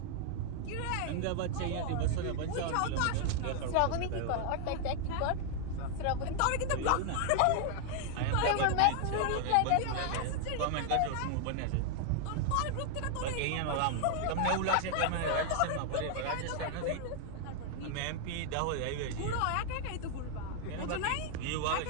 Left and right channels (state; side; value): different; both; correlation 0.00